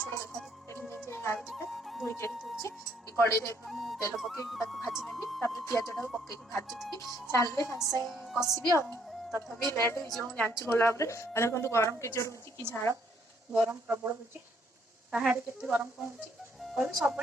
छोट देखा आलू दीटा धोई दूसरी कड़े तेल पकई भाजी नेबी पिजटा को पकई भाजुथी सारे सागे कषिबी तथापि लेट हो जानी गला देखो गरम के जोर हो कि झाड़ गरम प्रबल हो कहाड़े के गरम कौन हो सब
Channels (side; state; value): both; normal; correlation 0.68